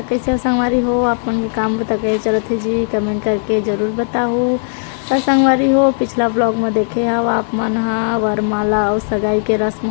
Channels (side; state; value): right; silent; 69 dB below the other